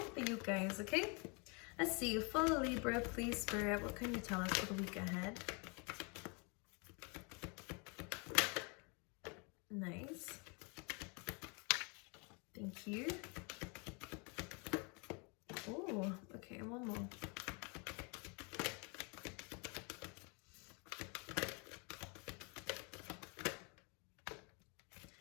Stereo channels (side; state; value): right; quieter; 32.3 dB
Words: for you guys, okay? Let's see, for Libra, please Spirit, what can you tell us for the week ahead? Nice. Thank you. Oh, okay, one more.